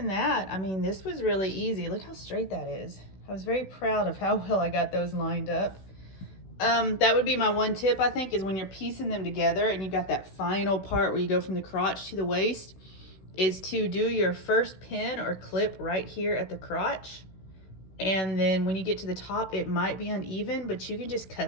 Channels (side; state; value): right; late; 16 ms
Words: that, I mean, this was really easy. Look how straight that is. I was very proud of how well I got those lined up. That would be my one tip, I think, is when you're piecing them together and you've got that final part where you go from the crotch to the waist, is to do your first pin or clip right here at the crotch. And then when you get to the top, it might be uneven, but you can just